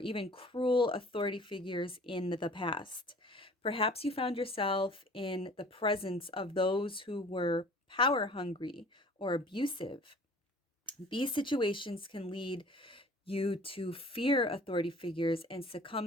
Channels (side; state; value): both; normal; correlation 0.48